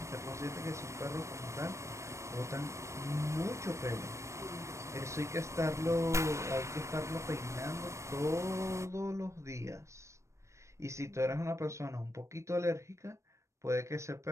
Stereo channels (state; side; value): late; left; 0.14 ms